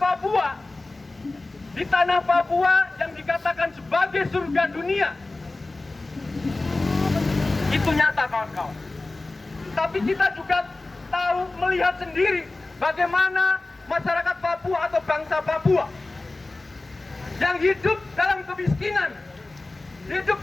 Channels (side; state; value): right; quieter; 3.1 dB